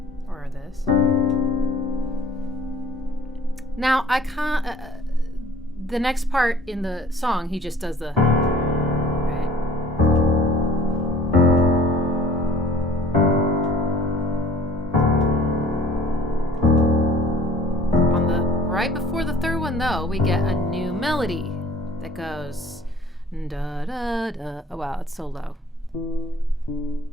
Or this. Now, I can't, the next part in the song, he just does the, right? On the, right before the third one, though, we get a new melody that goes, da da da. Oh, wow, it's so low.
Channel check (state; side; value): normal; both; correlation 0.51